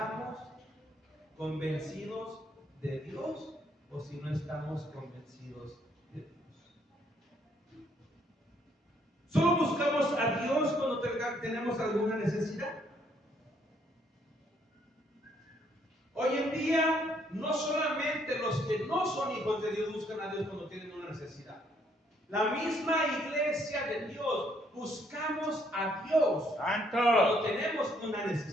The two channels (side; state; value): both; normal; correlation 0.69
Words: convencidos de Dios o si no estamos convencidos de Dios. Solo buscamos a Dios cuando tenemos alguna necesidad. Hoy en día, no solamente los que no son hijos de Dios buscan a Dios cuando tienen una necesidad. La misma iglesia de Dios buscamos a Dios Santo. cuando tenemos una